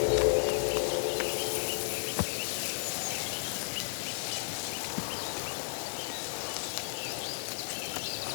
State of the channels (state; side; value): silent; right; digital silence